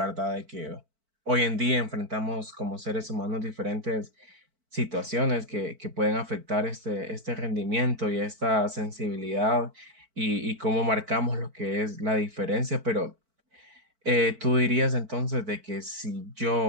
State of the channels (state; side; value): late; left; 4.5 ms